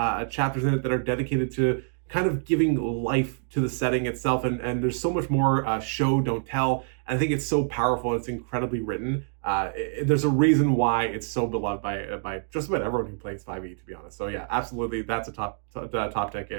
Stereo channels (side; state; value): left; silent; digital silence